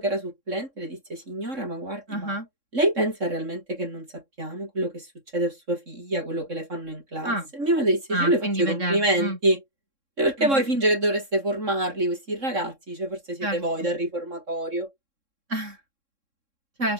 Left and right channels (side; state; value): left; late; 3.7 ms